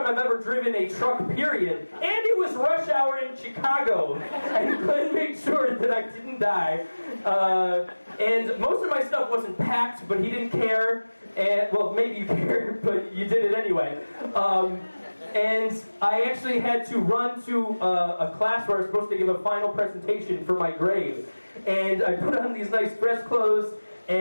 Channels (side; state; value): both; inverted; correlation -1.00